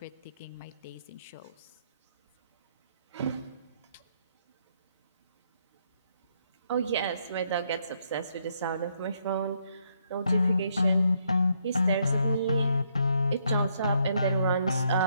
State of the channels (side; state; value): both; inverted; correlation -0.73